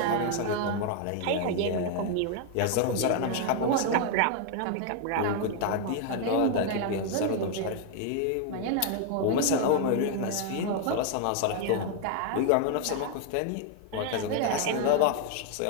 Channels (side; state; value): both; different; correlation 0.00